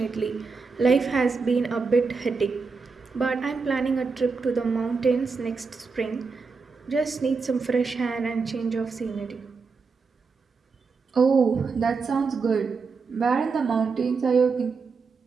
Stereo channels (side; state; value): left; quieter; 4.8 dB